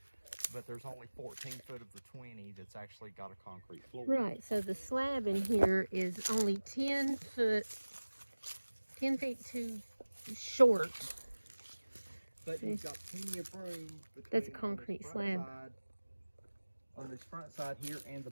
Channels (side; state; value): both; inverted; correlation -1.00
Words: but there's only 14 foot of the 20 that's actually got a concrete floor. right, so the slab in here is only 10 feet too short. But you've got plenty of room between That's a on the concrete front slab. side on this front side here and the